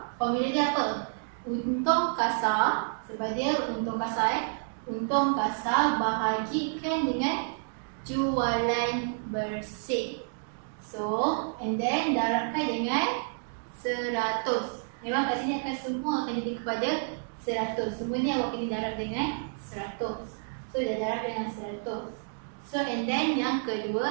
formula dia apa? Untung kasar, sebab dia untung kasar untung kasar bahagikan dengan jualan bersih. So, and then darabkan dengan 100. Memang kat sini akan semua akan jadi kepada 100. Semua ni awak kena darab dengan 100. So, dah darab dengan 100. So, and then yang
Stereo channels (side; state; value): left; silent; digital silence